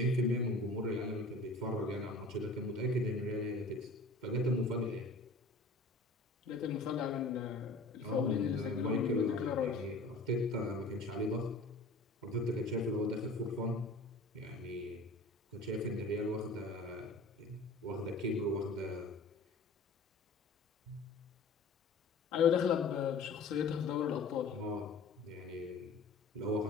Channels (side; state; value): right; quieter; 3.1 dB